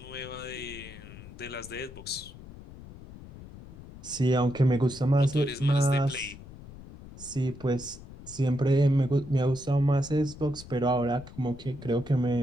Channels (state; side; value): noise; left; rumble, 16 dB below the sound